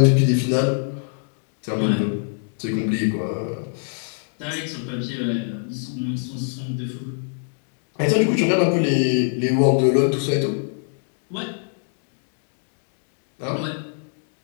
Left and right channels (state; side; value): silent; right; digital silence